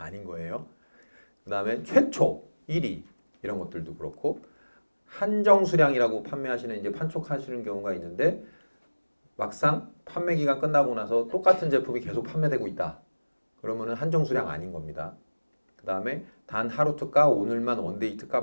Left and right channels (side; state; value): both; inverted; correlation -1.00